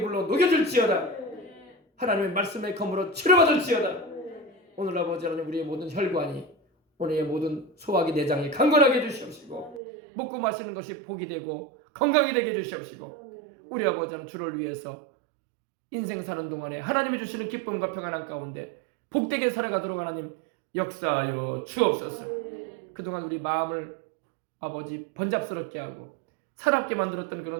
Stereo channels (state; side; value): drops out; left; at 9.8 s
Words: 불로 녹여질지어다. 하나님의 말씀의 검으로 치료받을지어다. 오늘 아버지 하나님 우리의 모든 혈관이 오늘의 모든 소화기 내장이 강건하게 해주시옵시고 먹고 마시는 것이 복이 되고 건강이 되게 해주시옵시고 우리 아버지 하나님 주를 위해서 인생 사는 동안에 하나님이 주시는 기쁨과 평안한 가운데 복되게 살아가도록 하나님 역사하여 주옵소서. 그동안 우리 마음을 아버지 번잡스럽게 하고 사납게 만들었던